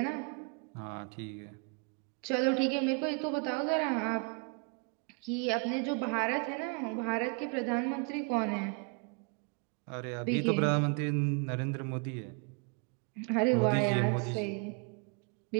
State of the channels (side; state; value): left; quieter; 34.9 dB